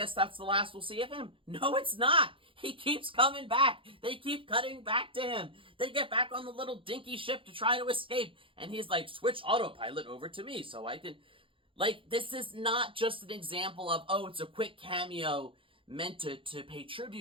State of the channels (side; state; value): left; late; 0.25 ms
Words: that's the last we'll see of him. No, it's not. He keeps coming back. They keep cutting back to him. They get back on the little dinky ship to try to escape. And he's like, switch autopilot over to me so I can... Like, this is not just an example of, oh, it's a quick cameo meant to pay